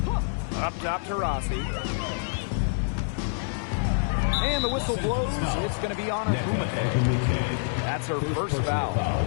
Up top, Taurasi. And the whistle blows. It's going to be on Wnba. That's her first foul.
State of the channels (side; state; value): right; silent; 57 dB below the other